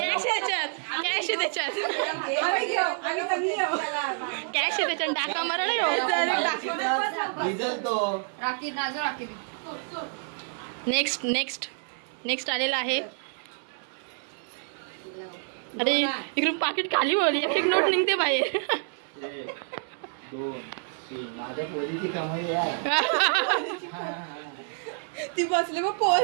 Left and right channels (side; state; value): left; silent; digital silence